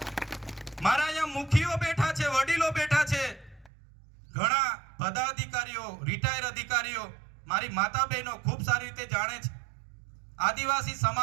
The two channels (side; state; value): left; drops out; at 3.7 s